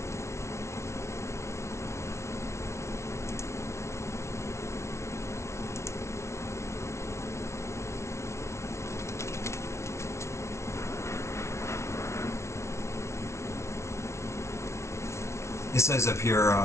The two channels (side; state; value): right; late; 0.13 ms